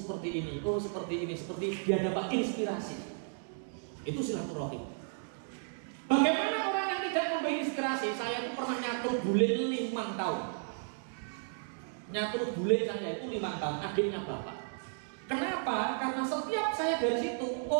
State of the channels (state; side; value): silent; left; digital silence